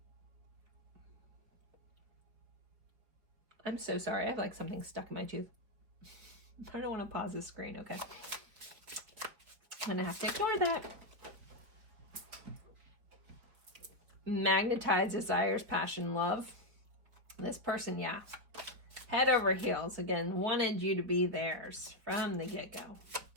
I'm so sorry. I have like something stuck in my tooth. I don't want to pause the screen. Okay. I'm going to have to ignore that. Magnetize, desires, passion, love. This person, yeah. Head over heels. Again, wanted you to be theirs from the get-go.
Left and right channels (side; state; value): left; late; 5.1 ms